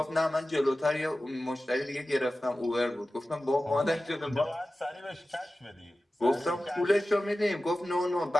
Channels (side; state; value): both; normal; correlation 0.95